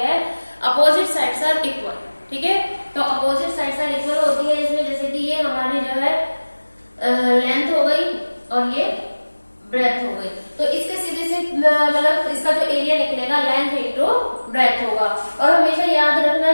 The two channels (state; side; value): inverted; both; correlation -1.00